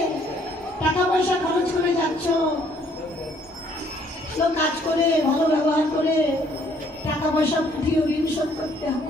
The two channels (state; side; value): normal; both; correlation 0.64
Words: টাকা পয়সা খরচ করে যাচ্ছ, ভালো কাজ করে ভালো ব্যবহার করে টাকা পয়সা পাঠিয়ে ঋণ শোধ করতে